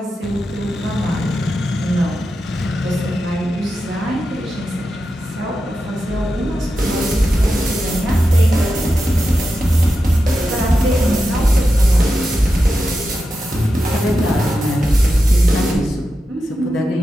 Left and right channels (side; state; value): both; normal; correlation 0.90